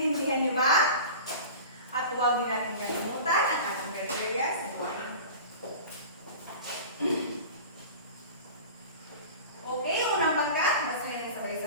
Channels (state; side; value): inverted; both; correlation -0.36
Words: nyo ba? At huwag din natin kalimutan ang ating criteria sa gawain. Okay, unang pangkat, basahin ng